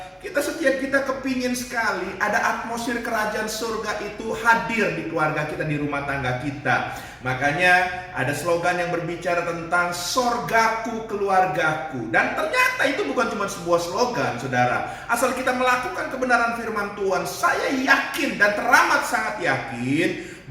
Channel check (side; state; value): both; identical; correlation 1.00